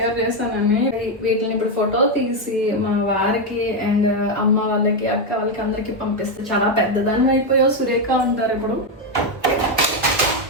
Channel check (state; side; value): normal; both; correlation 0.05